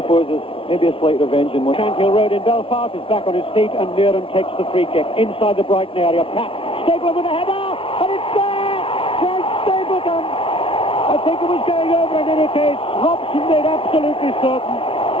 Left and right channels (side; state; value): right; late; 0.26 ms